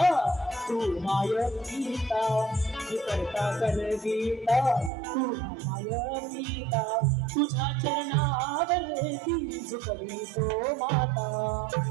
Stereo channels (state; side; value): drops out; left; at 4.9 s